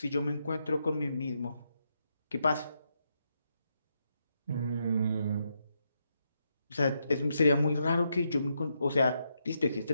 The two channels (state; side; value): inverted; both; correlation -0.81